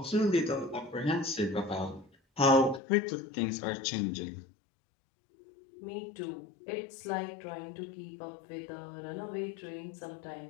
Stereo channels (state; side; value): drops out; right; at 2.8 s